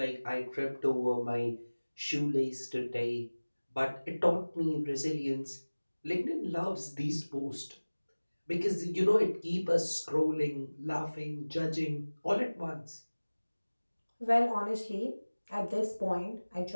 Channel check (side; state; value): both; inverted; correlation -1.00